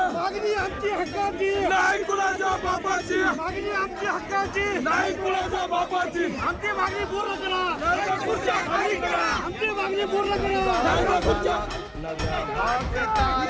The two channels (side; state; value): both; identical; correlation 1.00